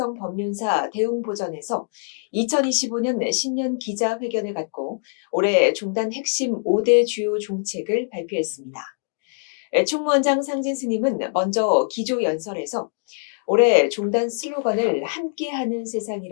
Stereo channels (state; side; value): silent; right; digital silence